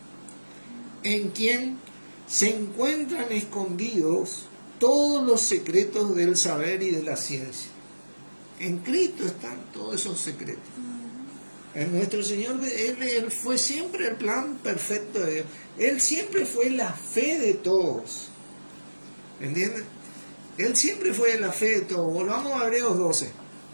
en quien se encuentran escondidos todos los secretos del saber y de la ciencia. En Cristo están todos esos secretos. En nuestro Señor, Él fue siempre el plan perfecto de Dios. Él siempre fue la fe de todos. ¿Entienden? Él siempre fue la fe de todos. Volvamos a Hebreos 12.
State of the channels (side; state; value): both; inverted; correlation -1.00